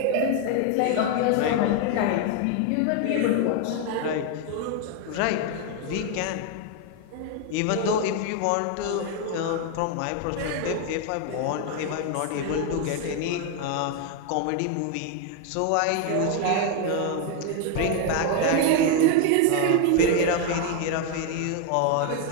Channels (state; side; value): different; both; correlation 0.01